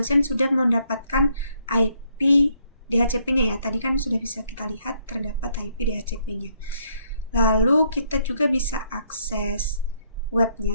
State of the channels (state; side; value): inverted; both; correlation -0.70